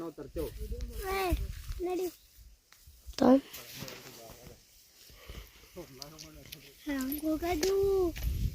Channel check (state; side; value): identical; both; correlation 1.00